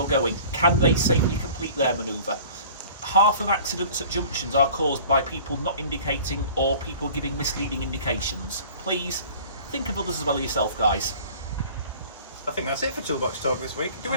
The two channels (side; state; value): both; inverted; correlation -0.46